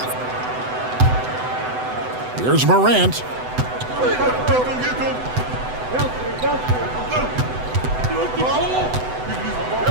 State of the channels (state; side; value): late; left; 8.0 ms